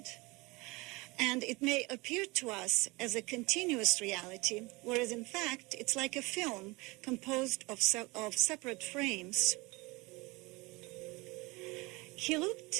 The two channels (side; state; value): left; quieter; 24.3 dB